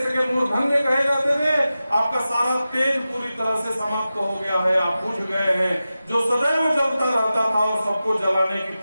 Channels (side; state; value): both; inverted; correlation -0.94